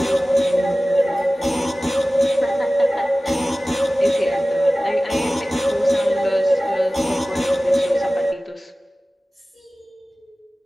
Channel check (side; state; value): both; normal; correlation 0.97